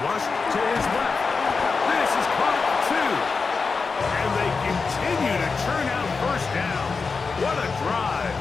to his left. This is caught 2. And they continue to churn out first down. What a drive.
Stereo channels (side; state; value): right; quieter; 4.6 dB